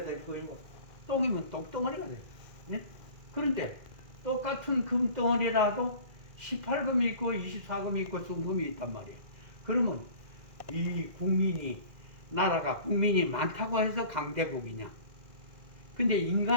될 것이고 똥이면 똥덩어리가 될 것이고 그런데 똑같은 금덩어리라도 18금이 있고 24금이 있고 순금이 있단 말이야. 그러면 이 국민이 나라가 국민이 많다고 해서 강대국이냐. 근데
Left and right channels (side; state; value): left; late; 2.0 ms